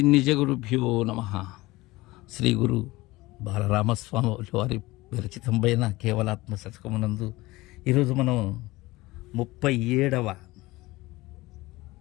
నిజగురుభ్యో నమః. శ్రీ గురు బాలరామస్వామి వారి విరచితంపైన కేవలాత్మ శతకమునందు ఈరోజు మనం 37వ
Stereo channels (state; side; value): quieter; right; 20.1 dB